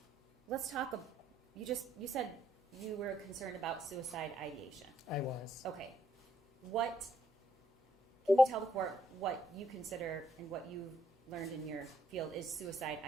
Let's talk. You said you were concerned about suicide ideation. I was. Okay. Can you tell the court what you consider and what you've learned in your field is suicide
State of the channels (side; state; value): both; normal; correlation 0.72